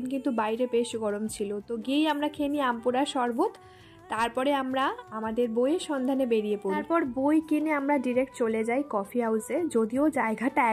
কিন্তু বাইরে বেশ গরম ছিল, তো গিয়েই আমরা খেয়ে নিই আমপুরা শরবত। তারপরে আমরা আমাদের বইয়ের সন্ধানে বেরিয়ে পড়ি। তারপর বই কিনে আমরা ডিরেক্ট চলে যাই কফি হাউসে। যদিও জায়গাটা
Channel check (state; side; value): identical; both; correlation 1.00